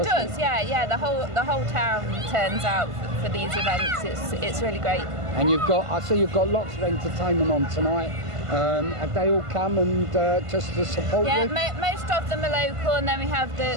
It does, yeah. The whole town turns out for these events. It's really great. And I see you've got lots of entertainment on tonight. Have they all come and just to support you? Yeah, most of them are local, and then we have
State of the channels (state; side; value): late; left; 1.5 ms